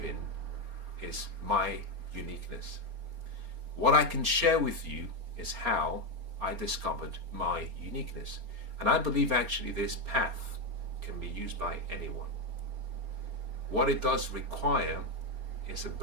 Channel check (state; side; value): late; left; 4.3 ms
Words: is my uniqueness. What I can share with you is how I discovered my uniqueness. And I believe actually this path can be used by anyone. What it does require is a